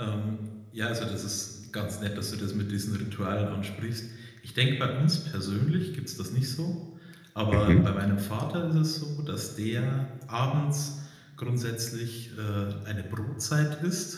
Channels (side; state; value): both; identical; correlation 1.00